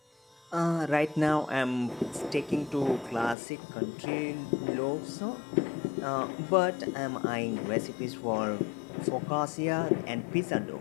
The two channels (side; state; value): right; drops out; at 3.4 s